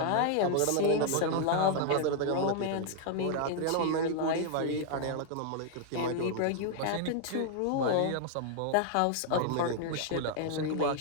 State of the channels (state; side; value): different; both; correlation 0.00